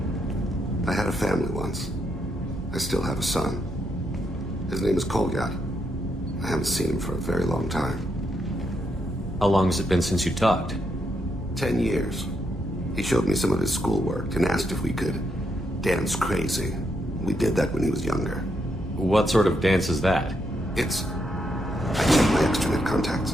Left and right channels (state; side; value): normal; both; correlation 0.79